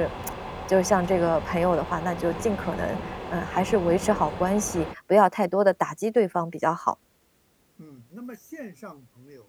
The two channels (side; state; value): both; identical; correlation 1.00